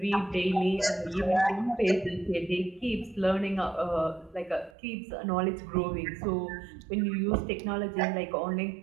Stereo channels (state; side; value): drops out; left; at 4.8 s